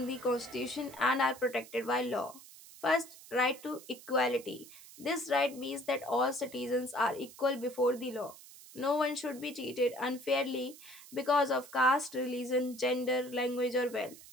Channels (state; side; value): noise; right; hiss, 19 dB below the sound